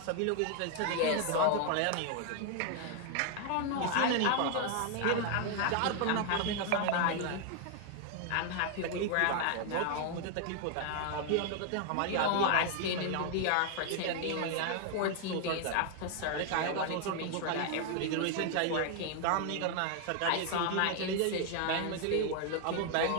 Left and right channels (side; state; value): both; different; correlation 0.00